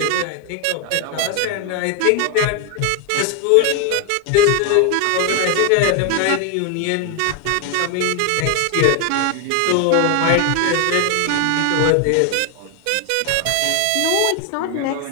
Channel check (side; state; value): both; different; correlation 0.01